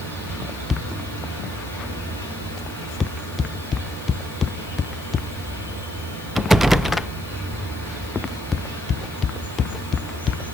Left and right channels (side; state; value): left; noise; hiss, 18 dB below the sound